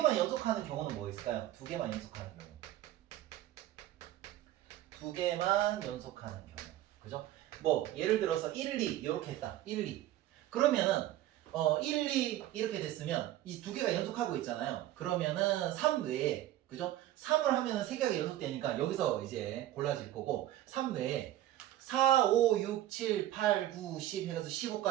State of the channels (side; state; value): left; quieter; 13.7 dB